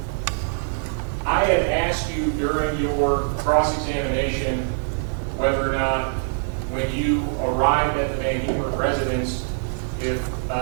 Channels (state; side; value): silent; left; digital silence